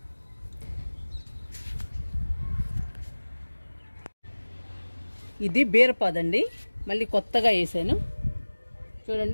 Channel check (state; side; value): inverted; both; correlation -1.00